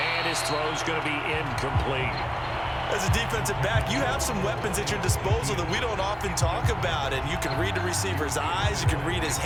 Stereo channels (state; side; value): identical; both; correlation 1.00